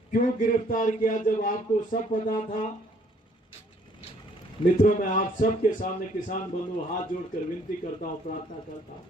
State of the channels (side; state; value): both; normal; correlation 0.63